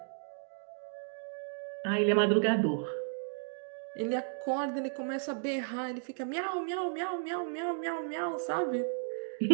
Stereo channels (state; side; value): silent; left; digital silence